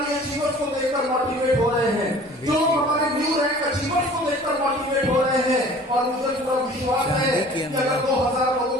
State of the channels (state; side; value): normal; both; correlation 0.47